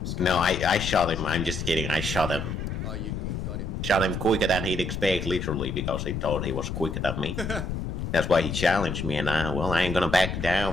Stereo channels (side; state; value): left; noise; rumble, 4 dB below the sound